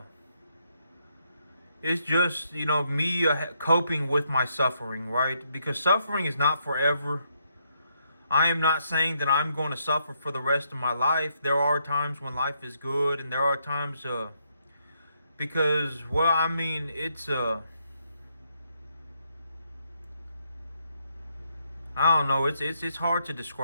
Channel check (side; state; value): both; inverted; correlation -0.76